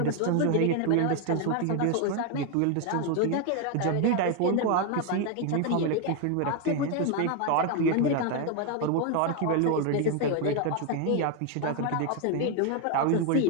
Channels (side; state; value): both; different; correlation 0.01